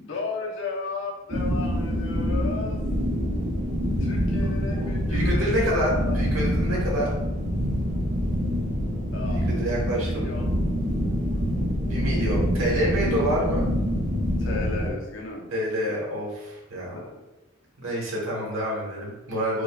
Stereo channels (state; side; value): normal; both; correlation 0.63